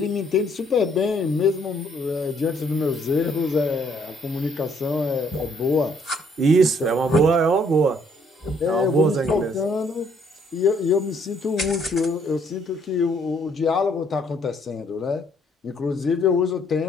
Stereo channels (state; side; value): normal; both; correlation 0.66